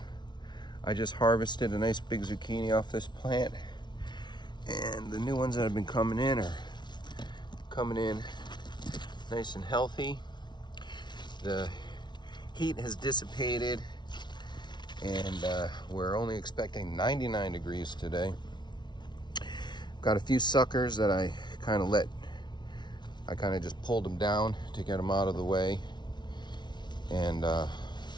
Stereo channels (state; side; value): late; right; 0.21 ms